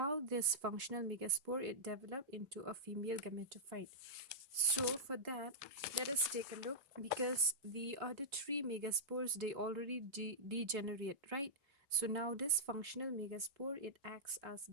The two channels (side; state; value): left; late; 3.5 ms